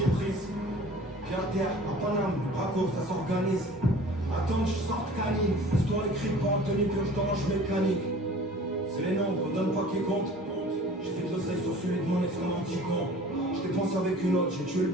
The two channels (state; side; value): normal; both; correlation 0.46